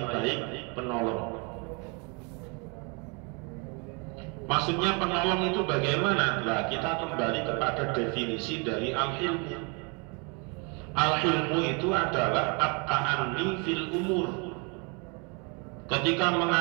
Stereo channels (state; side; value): quieter; left; 33.2 dB